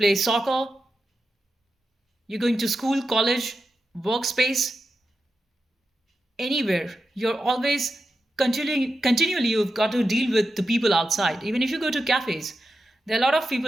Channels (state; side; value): normal; both; correlation 0.89